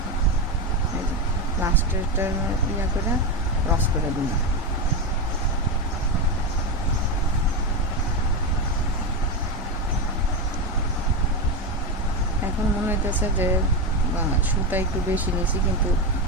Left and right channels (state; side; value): normal; both; correlation 0.12